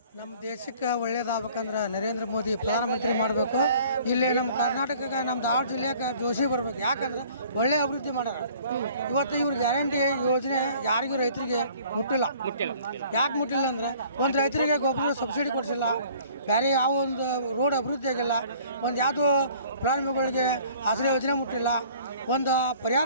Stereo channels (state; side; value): inverted; both; correlation -0.53